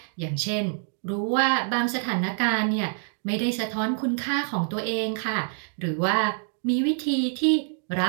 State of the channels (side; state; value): left; silent; 61 dB below the other